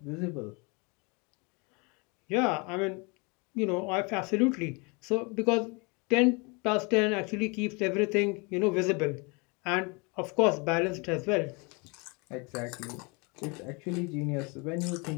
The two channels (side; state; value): right; quieter; 30.0 dB